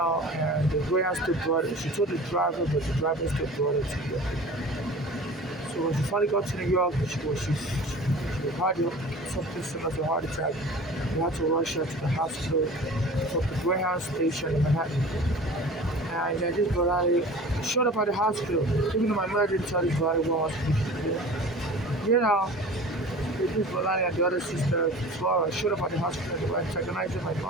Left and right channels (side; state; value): both; normal; correlation 0.40